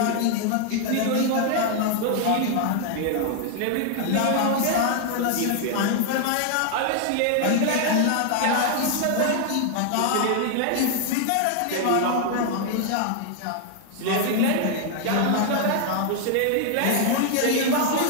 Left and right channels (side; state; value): both; different; correlation 0.00